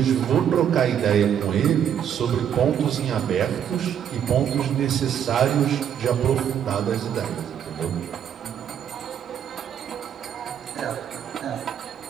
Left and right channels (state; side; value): quieter; left; 9.1 dB